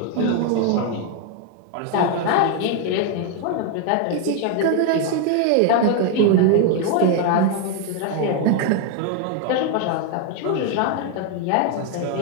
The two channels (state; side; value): different; both; correlation 0.01